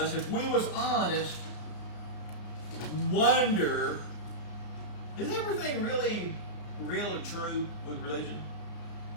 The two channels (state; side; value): late; right; 33 ms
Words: if we was honest, wonder, is everything really true with religion?